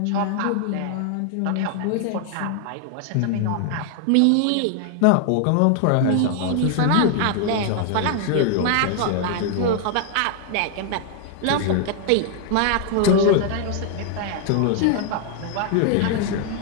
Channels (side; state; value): both; different; correlation 0.00